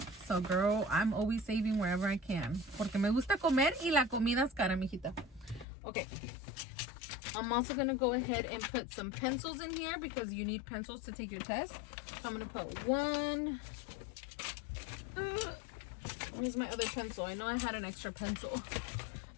So girl, I'm always saving wherever I can, porque me gusta comer y la comida es cara, mijita. Okay, I'm also gonna go ahead and put some pencils in here because you need pencils to take your test. So I'm gonna put one. Where's my other pencil? I know I had an extra pencil.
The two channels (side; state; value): right; drops out; at 5.7 s